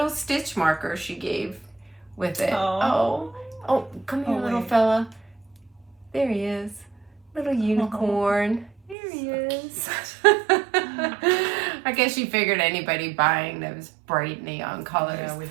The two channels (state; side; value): drops out; left; at 9.0 s